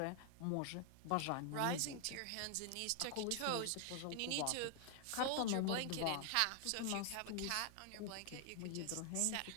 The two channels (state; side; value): different; both; correlation 0.00